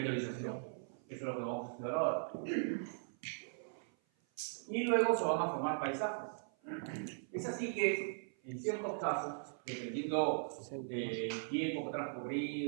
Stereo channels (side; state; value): left; silent; 52 dB below the other